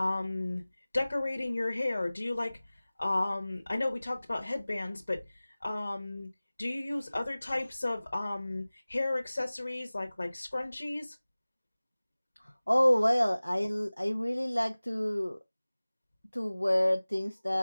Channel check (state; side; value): inverted; both; correlation -0.99